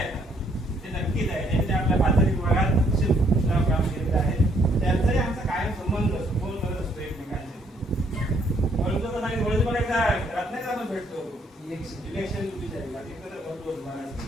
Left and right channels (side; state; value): both; normal; correlation 0.68